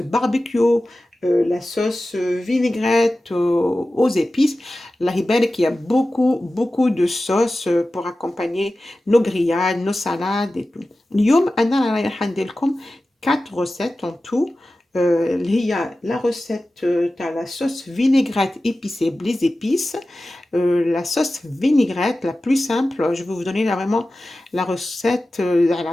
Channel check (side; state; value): both; normal; correlation 0.95